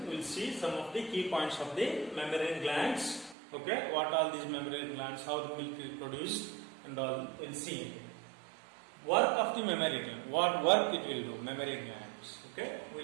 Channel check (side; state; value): left; drops out; at 3.4 s